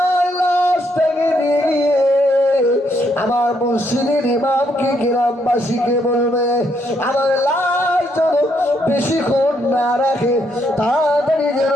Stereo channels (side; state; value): both; normal; correlation 0.74